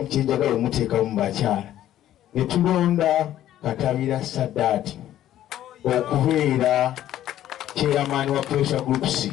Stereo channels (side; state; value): right; quieter; 12.5 dB